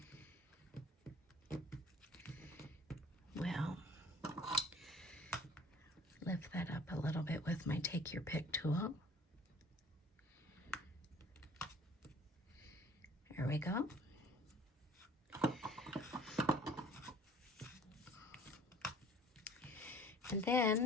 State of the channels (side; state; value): both; normal; correlation 0.51